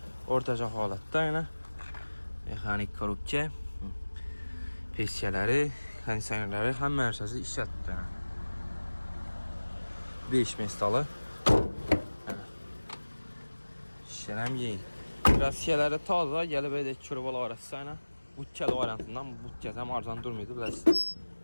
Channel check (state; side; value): inverted; both; correlation -1.00